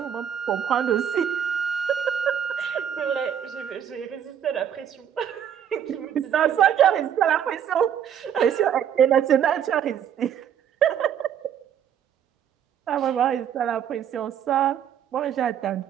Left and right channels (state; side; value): quieter; left; 9.1 dB